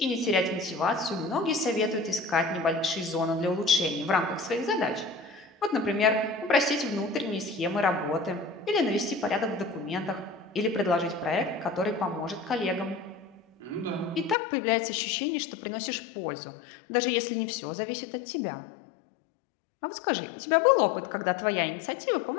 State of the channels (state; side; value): drops out; right; at 14.4 s